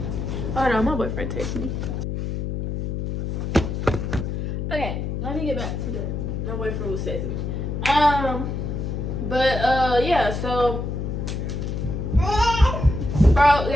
hold on, my boyfriend texted me. Okay, let me get back to my boyfriend was texting me. But yeah, so bro,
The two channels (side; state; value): left; noise; hum, 3 dB below the sound